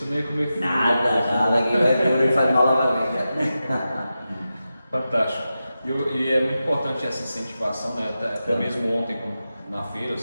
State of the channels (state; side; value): inverted; both; correlation -0.92